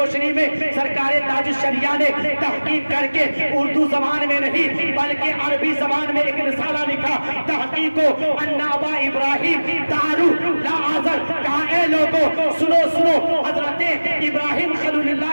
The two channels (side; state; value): both; inverted; correlation -1.00